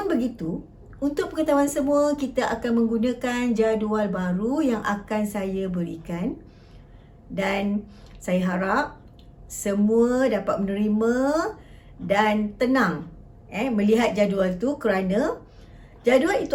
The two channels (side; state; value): both; identical; correlation 1.00